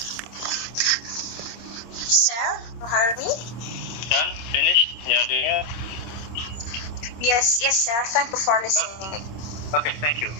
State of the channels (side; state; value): right; late; 26 ms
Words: Sir, you heard me? Done? Finished? Yeah, do you? Yes, sir. Thank you for listening. Okay, thank you.